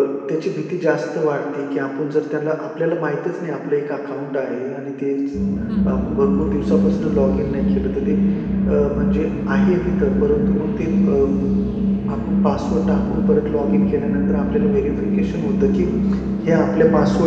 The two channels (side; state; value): both; identical; correlation 1.00